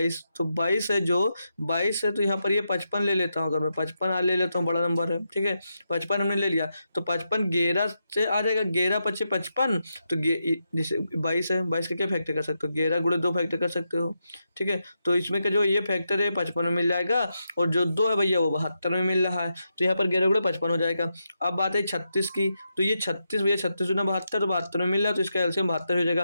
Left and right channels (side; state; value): both; inverted; correlation -0.85